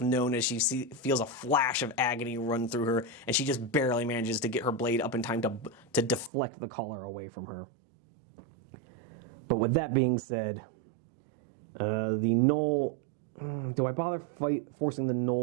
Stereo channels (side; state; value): left; drops out; at 6.3 s